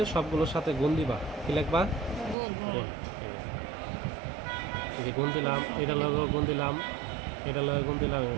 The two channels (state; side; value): drops out; left; at 2.4 s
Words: সবগুলোর সাথে গুণ দিবা, কি লিখবা? গুণ দিলাম, এটা লগে গুণ দিলাম, এটা লগে গুণ দিলাম।